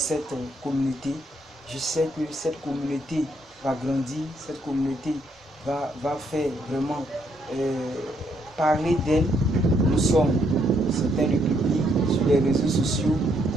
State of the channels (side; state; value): both; normal; correlation 0.72